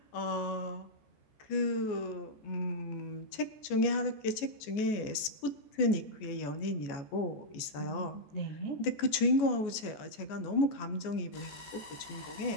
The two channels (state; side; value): late; right; 14 ms